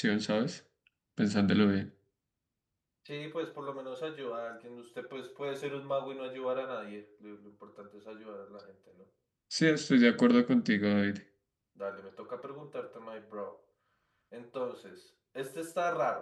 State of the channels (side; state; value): both; identical; correlation 1.00